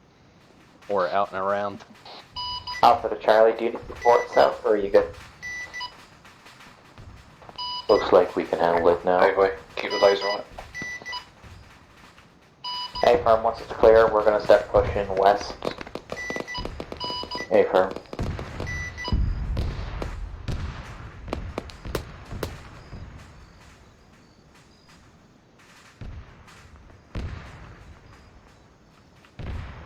Or out and around. Alpha to Charlie, do you need support south or are you good? Looks like we can handle it now. Hey boy, keep the laser on it. A firm, once it's clear, we're gonna start pushing west. A firm.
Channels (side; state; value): both; identical; correlation 1.00